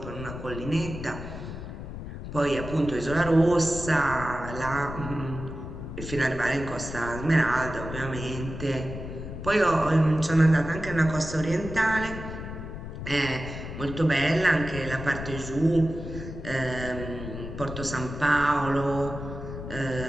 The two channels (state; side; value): noise; left; rumble, 9 dB below the sound